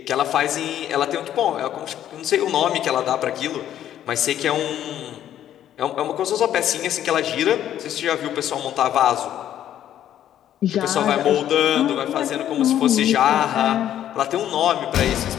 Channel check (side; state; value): right; quieter; 11.1 dB